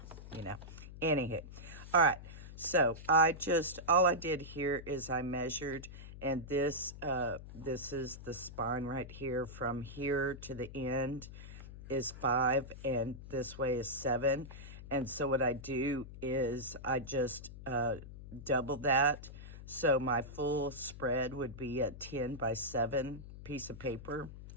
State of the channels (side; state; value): left; noise; hum, 13 dB below the sound